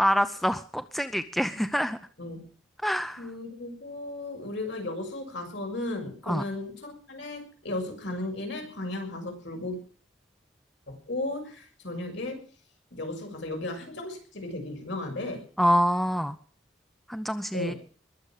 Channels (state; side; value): normal; both; correlation 0.78